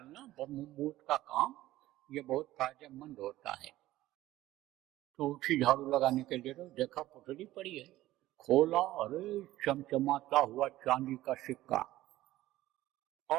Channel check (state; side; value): quieter; left; 15.7 dB